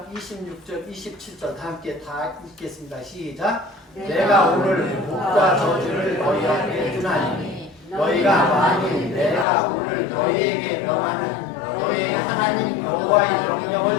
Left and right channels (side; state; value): right; drops out; at 9.5 s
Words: 26절 27절 다 함께 다 읽겠습니다. 시작. 내가 오늘 복과 저주를 너희에게 주나니 너희가 만일 내가 오늘 너희에게 명하는 너희의 하나님 여호와의